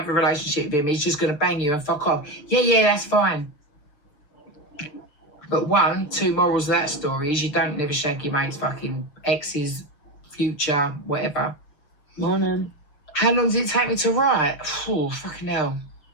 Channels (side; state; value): right; late; 6.8 ms